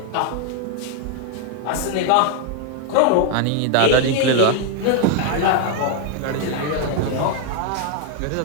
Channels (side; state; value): both; different; correlation 0.00